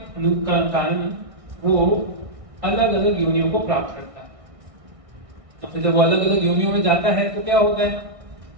कारण वो अलग अलग योनियों को प्राप्त करता है। तो फिर जब वो अलग अलग योनियों में जाता है तो क्या होता है?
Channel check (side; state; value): left; late; 1.6 ms